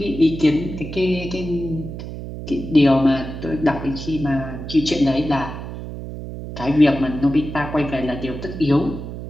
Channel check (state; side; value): noise; right; hum, 9 dB below the sound